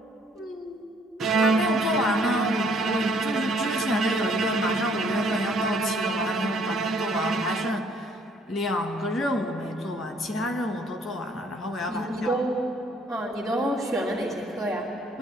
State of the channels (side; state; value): both; normal; correlation 0.62